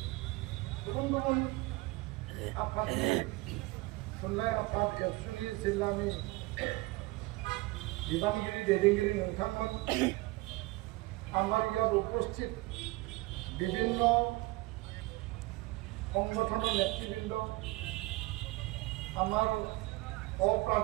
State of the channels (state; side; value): quieter; left; 21.9 dB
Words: गुबुन गुबुन आफादनि थुनलाइ आफाद एबसुनि जिल्लानि बिबानगिरि दैदेनगिरि नोंथांमोन আমার ইয়াত উপস্থিত বিভিন্ন সংগঠনের নেতৃবৃন্দ আমার